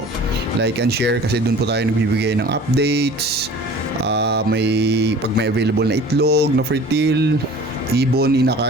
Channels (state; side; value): normal; both; correlation 0.44